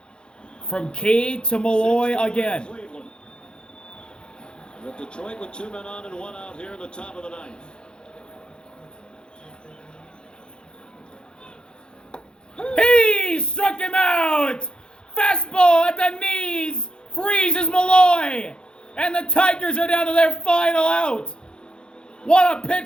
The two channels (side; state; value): right; late; 0.049 ms